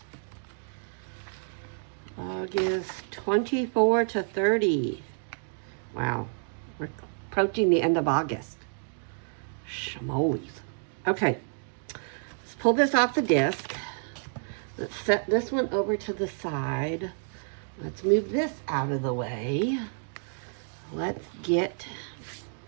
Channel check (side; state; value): left; silent; digital silence